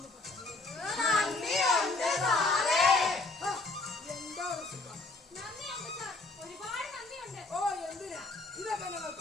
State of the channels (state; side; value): quieter; right; 3.3 dB